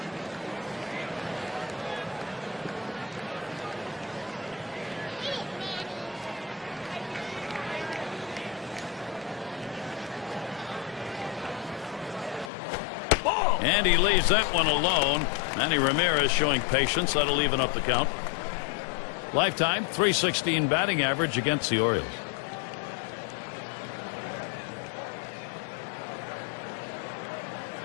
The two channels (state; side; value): drops out; right; at 12.5 s